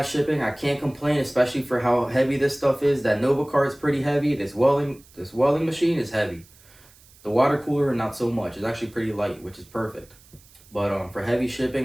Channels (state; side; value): noise; right; hiss, 26 dB below the sound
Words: shipping. I can't complain, especially for how heavy this stuff is. That Nova cart is pretty heavy. This welding machine is heavy. The water cooler, not so much. It's actually pretty light, which is perfect. But for heavy